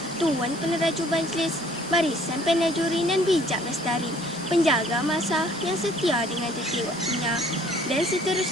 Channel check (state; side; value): normal; both; correlation 0.57